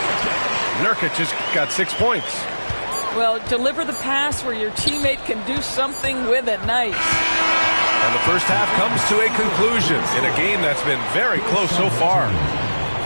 Nurkic has got 6 points. Well, deliver the pass where your teammate can do something with it. Nice. And the first half comes to a conclusion in a game that's been very close so far.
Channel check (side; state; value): both; inverted; correlation -1.00